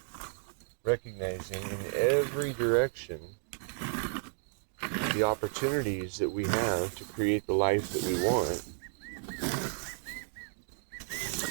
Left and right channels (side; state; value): left; silent; digital silence